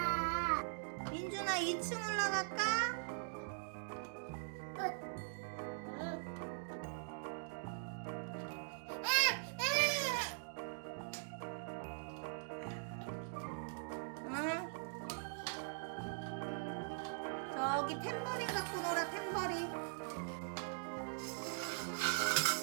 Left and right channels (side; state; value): left; silent; digital silence